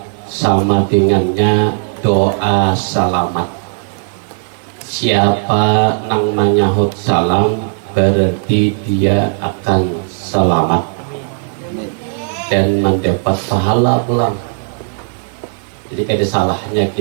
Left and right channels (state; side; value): silent; left; 70 dB below the other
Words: sama dengannya doa salamat. Siapa nang menyahut salam berarti dia akan selamat dan mendapat pahala pulang. Jadi ada salahnya